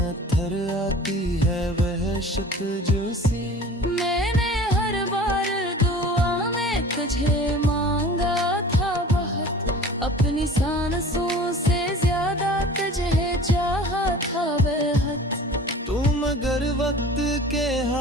आती है वहशत जोशी। मैंने हर बार दुआ में तुझे मांगा था बहुत, अपनी सांसों से ज्यादा तुझे चाहा था बेहद। तुम अगर वक्त के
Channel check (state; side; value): normal; both; correlation 0.42